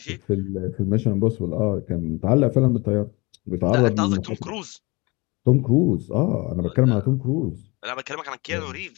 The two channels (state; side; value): quieter; right; 25.7 dB